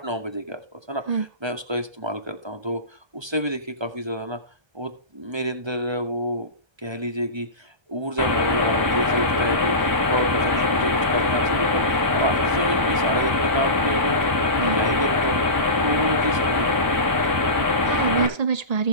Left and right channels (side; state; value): left; late; 1.3 ms